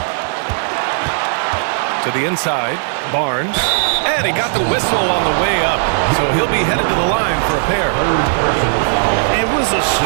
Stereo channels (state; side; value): silent; left; 61 dB below the other